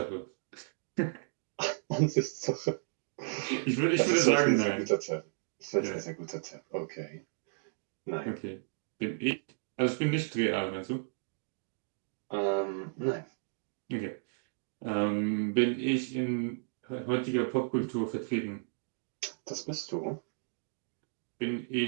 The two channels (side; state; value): left; silent; digital silence